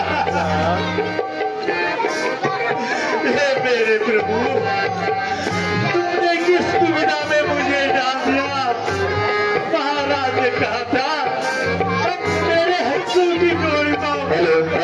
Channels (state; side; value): identical; both; correlation 1.00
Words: जब मेरे प्रभु, तुमने किस दुविधा में मुझे डाल दिया? महाराज ने कहा था मेरे हंसू की गोली